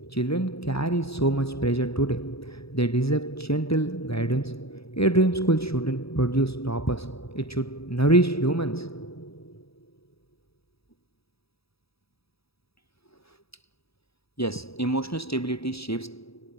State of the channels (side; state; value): right; late; 0.77 ms